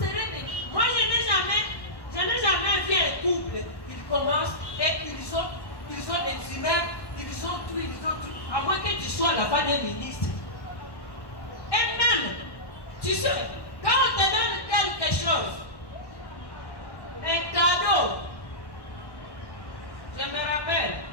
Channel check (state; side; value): late; right; 1.1 ms